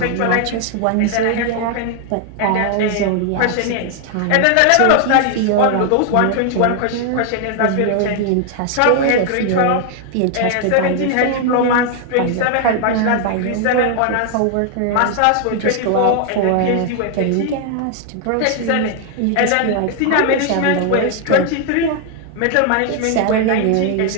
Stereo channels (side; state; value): both; different; correlation 0.00